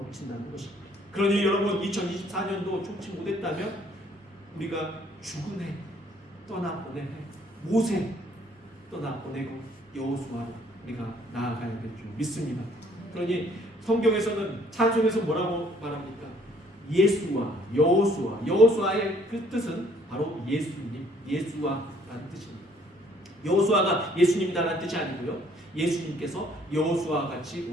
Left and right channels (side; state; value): both; normal; correlation 0.62